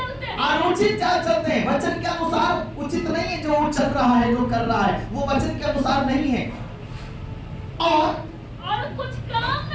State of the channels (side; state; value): both; identical; correlation 1.00